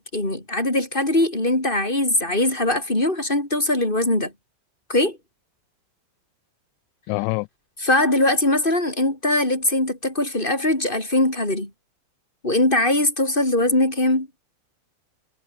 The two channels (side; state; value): right; late; 2.5 ms